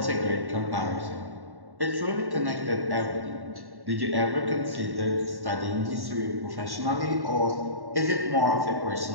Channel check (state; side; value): late; left; 1.1 ms